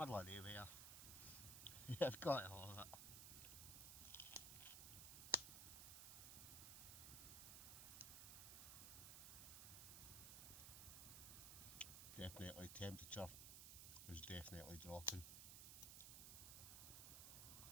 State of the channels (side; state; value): right; noise; hiss, 5 dB below the sound